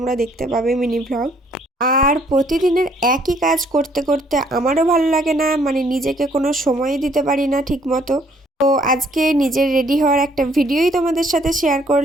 দেখতে পাবে, মিনি ব্লগ। আর প্রতিদিনের একই কাজ করতে করতে আমারও ভালো লাগে না, মানে নিজেকে কোনো সময় দিতে পারি না ঠিক মতো। তো আজকে নিজের রেডি হওয়ার একটা ভিডিওই তোমাদের সাথে শেয়ার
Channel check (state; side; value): normal; both; correlation 0.64